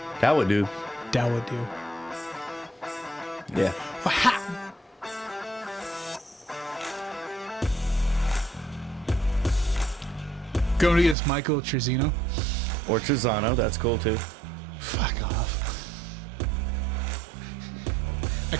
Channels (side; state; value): left; drops out; at 11.2 s